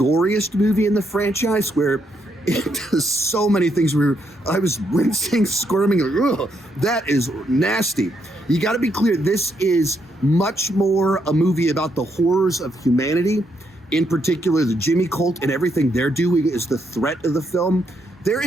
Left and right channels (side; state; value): both; normal; correlation 0.77